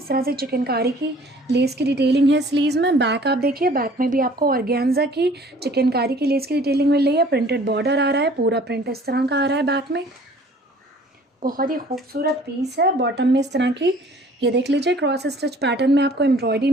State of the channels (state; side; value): normal; both; correlation 0.52